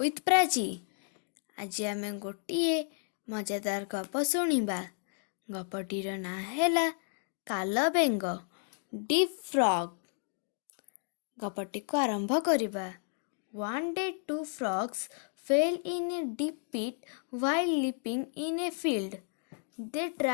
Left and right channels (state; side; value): silent; right; 56 dB below the other